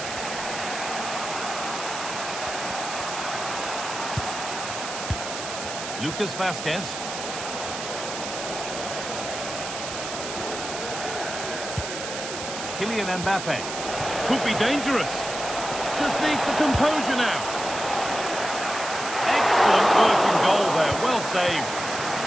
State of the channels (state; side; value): noise; right; hiss, 7 dB below the sound